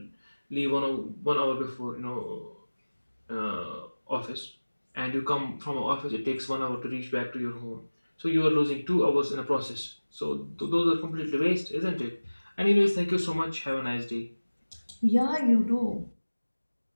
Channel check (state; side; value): inverted; both; correlation -1.00